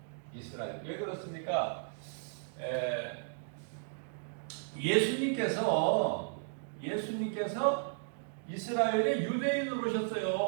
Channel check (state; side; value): silent; left; digital silence